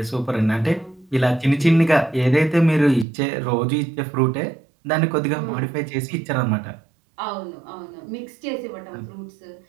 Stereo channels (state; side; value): drops out; left; at 3.1 s